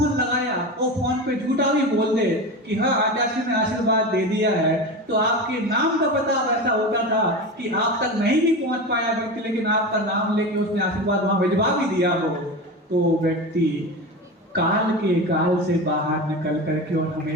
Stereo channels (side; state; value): both; normal; correlation 0.25